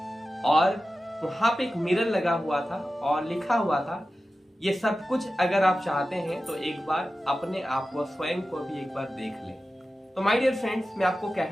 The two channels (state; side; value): normal; both; correlation 0.94